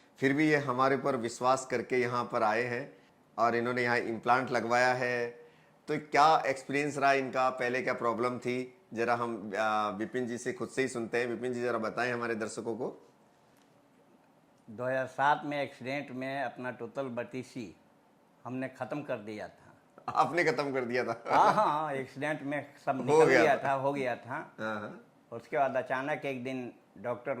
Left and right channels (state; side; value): identical; both; correlation 1.00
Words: फिर भी ये हमारे ऊपर विश्वास करके यहाँ पर आए हैं और इन्होंने यहाँ इम्प्लांट लगवाया है। तो क्या एक्सपीरियंस रहा इनका, पहले क्या प्रॉब्लम थी, ज़रा हम विपिन जी से खुद से ही सुनते हैं। विपिन जी ज़रा बताएं हमारे दर्शकों को। 2007 में एक्सीडेंट में अपना टोटल बत्तीसी हमने ख़त्म कर दिया था। आपने ख़त्म कर दिया था? हाँ, एक्सीडेंट में सब हो निकल गया गया था। था, हो गया था। हाँ हाँ। उसके बाद अचानक एक दिन डॉक्टर